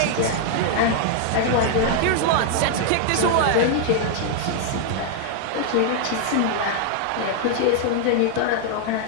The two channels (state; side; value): different; both; correlation 0.00